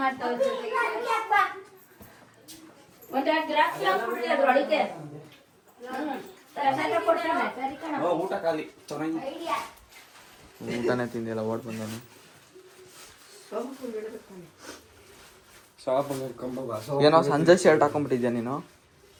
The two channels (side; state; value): both; identical; correlation 1.00